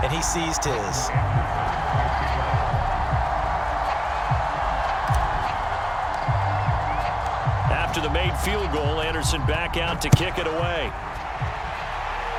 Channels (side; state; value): both; identical; correlation 1.00